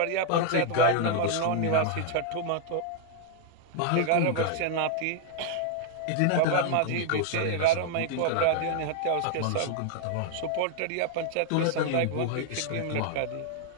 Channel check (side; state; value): both; different; correlation 0.00